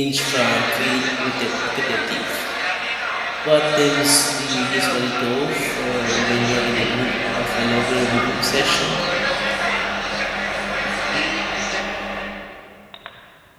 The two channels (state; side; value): identical; both; correlation 1.00